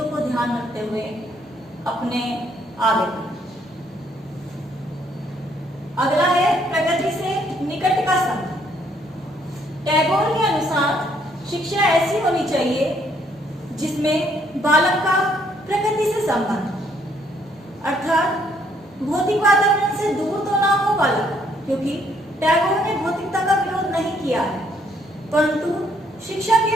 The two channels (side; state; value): both; normal; correlation 0.68